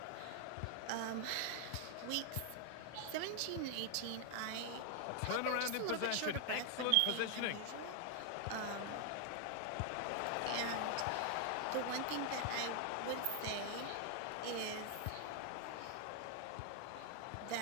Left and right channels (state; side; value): different; both; correlation 0.00